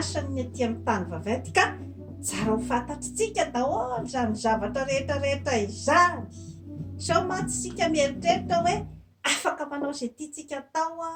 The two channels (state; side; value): identical; both; correlation 1.00